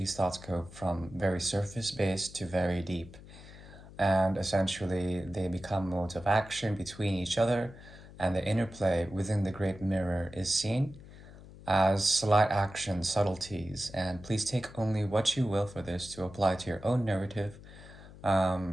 thoughts go from very surface based to very deep, and essentially they become modes of action between each other, and the interplay within the great mirror is seen as slight action subtleties, and please take only what you will for this to apply to your own narrative.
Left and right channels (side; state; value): left; noise; hum, 18 dB below the sound